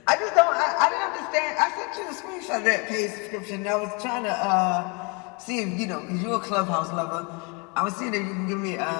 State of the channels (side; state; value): right; quieter; 30.7 dB